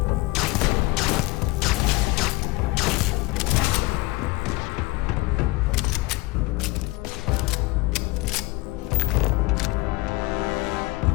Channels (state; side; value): quieter; right; 22.4 dB